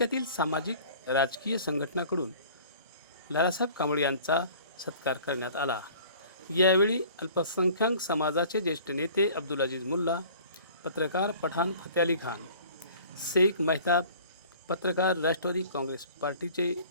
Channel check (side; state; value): both; inverted; correlation -0.48